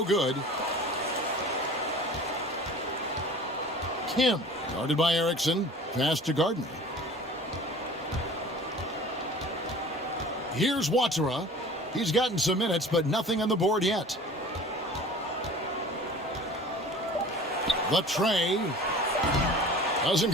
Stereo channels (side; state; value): both; normal; correlation 0.42